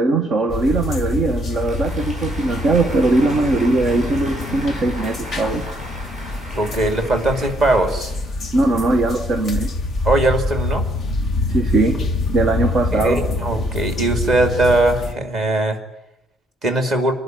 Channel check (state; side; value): normal; both; correlation 0.69